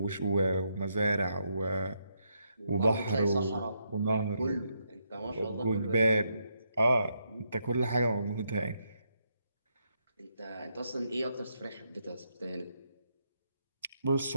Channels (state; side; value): inverted; both; correlation -0.79